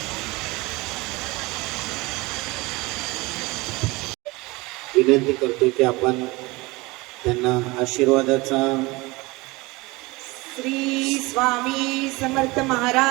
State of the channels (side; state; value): left; quieter; 23.1 dB